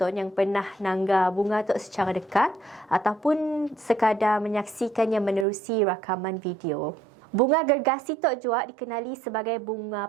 yang pernah nangga bunga tu secara dekat ataupun sekadar menyaksikannya menerusi rakaman video. Bunga gergasi tok juga dikenali sebagai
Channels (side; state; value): left; drops out; at 5.5 s